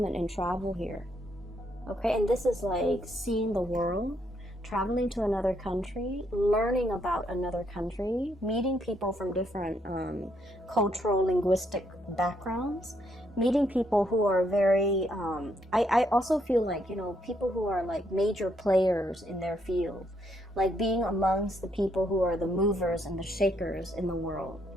and travel here. Okay? And this is like seeing the world, traveling to another country, learning about another country, meeting people from different cultural, linguistic backgrounds, meeting people who are very, I also feel like, you know, people who are like major players in their field, like being amongst the people who are the movers and the shakers in the world.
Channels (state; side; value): normal; both; correlation 0.74